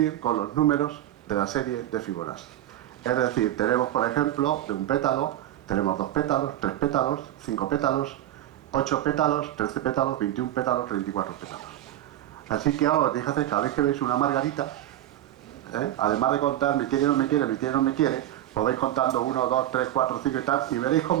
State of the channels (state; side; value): quieter; left; 13.0 dB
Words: con los números de la serie de Fibonacci. Es decir, tenemos, por ejemplo, de un pétalo, tenemos 2 pétalos, 3 pétalos, 5 pétalos, 8 pétalos, 13 pétalos, 21 pétalos, 34 pétalos. Así que ahora os dije hacer, cada vez que veis una margarita, además de contar me quiere, no me quiere, me quiere, no me quiere, os vais contando 1, 2, 3, 4, 5 y tal, y veréis